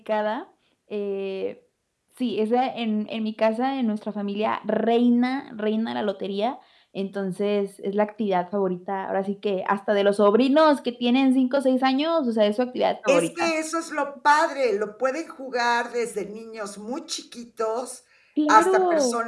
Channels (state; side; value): identical; both; correlation 1.00